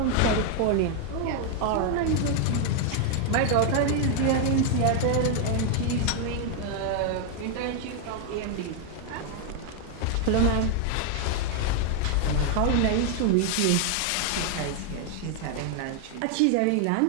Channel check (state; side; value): different; both; correlation 0.00